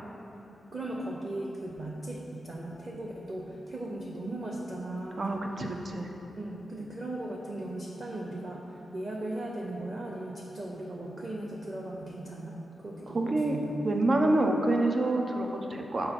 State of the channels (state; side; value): normal; both; correlation 0.89